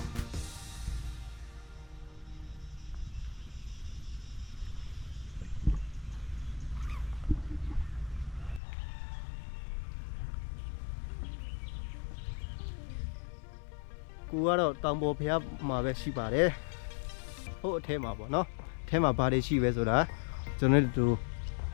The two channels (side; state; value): right; drops out; at 8.6 s